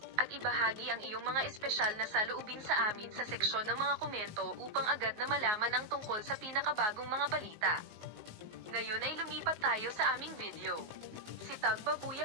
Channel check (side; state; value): left; late; 19 ms